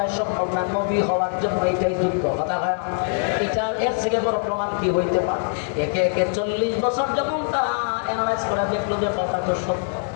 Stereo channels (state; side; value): silent; right; digital silence